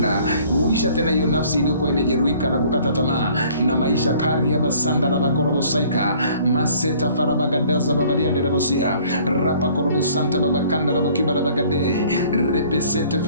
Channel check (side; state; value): both; inverted; correlation -0.56